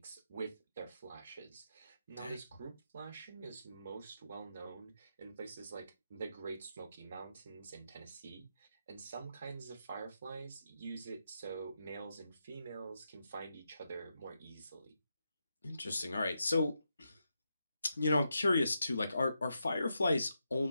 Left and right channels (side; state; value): both; inverted; correlation -0.85